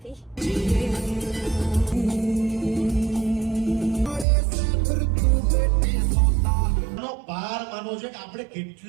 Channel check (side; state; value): left; drops out; at 4.2 s